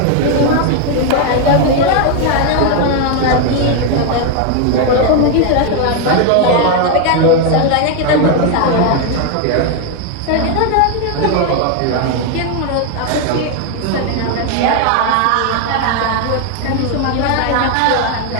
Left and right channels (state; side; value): different; both; correlation 0.01